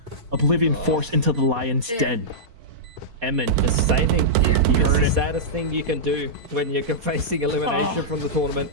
Oblivion Force into the lion's den. Emin just saving. It's the saddest thing you can do when you're facing elimination from the tournament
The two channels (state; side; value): late; left; 4.2 ms